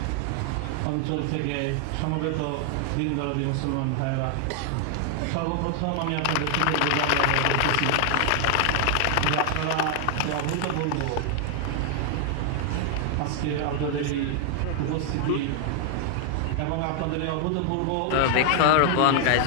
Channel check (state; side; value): different; both; correlation 0.00